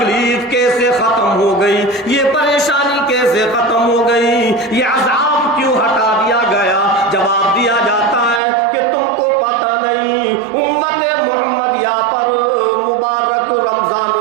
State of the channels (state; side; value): drops out; left; at 8.4 s